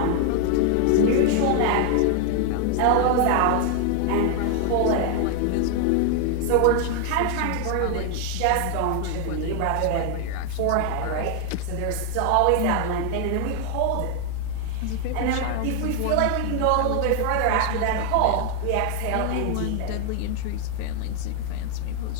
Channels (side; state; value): both; different; correlation 0.00